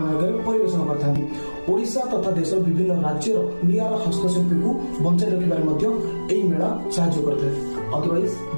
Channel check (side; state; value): both; inverted; correlation -1.00